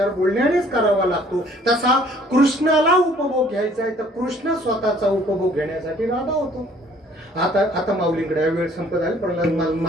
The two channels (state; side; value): normal; both; correlation 0.58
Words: बोलण्यानेच करावा लागतो. तसा कृष्णाला उपभोग घ्यायचा आहे तर कृष्ण स्वतःचा उपभोग घेण्यासाठी राधा होतो. आता माऊलींकडे आहे, वेळ संपत आली पण मला